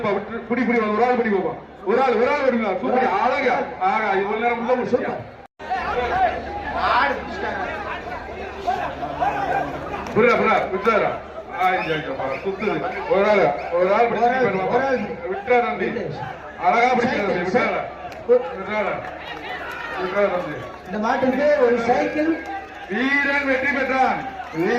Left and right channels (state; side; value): identical; both; correlation 1.00